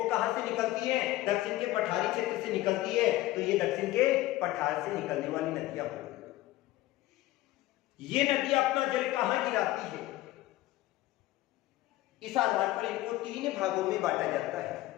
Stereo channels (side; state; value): right; quieter; 16.8 dB